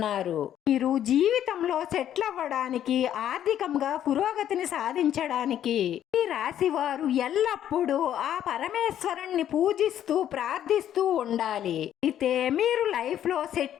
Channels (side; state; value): right; quieter; 10.8 dB